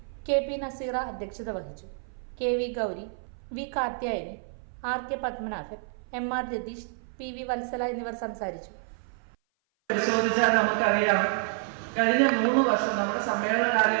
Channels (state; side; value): silent; left; 56 dB below the other